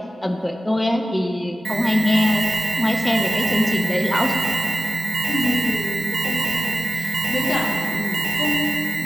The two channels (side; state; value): both; normal; correlation 0.93